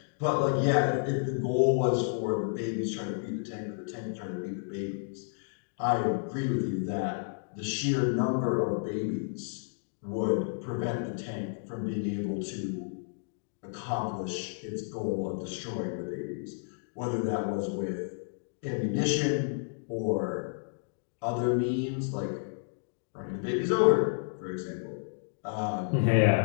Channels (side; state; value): right; silent; digital silence